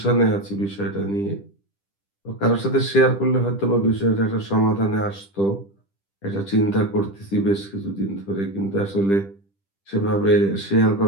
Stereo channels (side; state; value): right; late; 10 ms